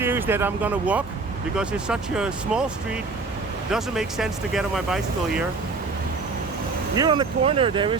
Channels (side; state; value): left; quieter; 4.0 dB